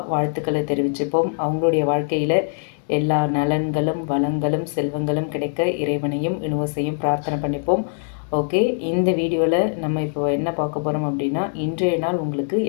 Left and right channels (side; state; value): right; silent; digital silence